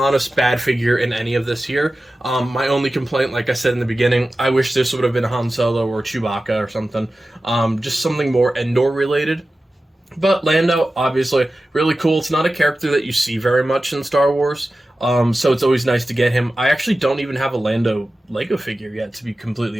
bad figure in any of this here. My only complaint, like I said in the beginning, I wish this would have been Han Solo or Chewbacca or something. Just something more Endor related. But Lando, obviously, really cool. It's not a character that you see very much in Star Wars, so it's always nice to get him. I actually don't even have a Lando Lego figure yet, to be completely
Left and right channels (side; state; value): both; normal; correlation 0.94